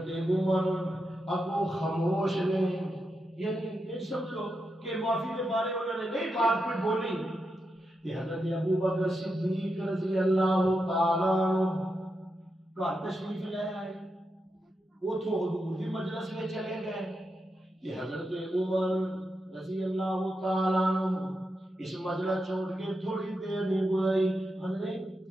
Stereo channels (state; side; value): normal; both; correlation 0.86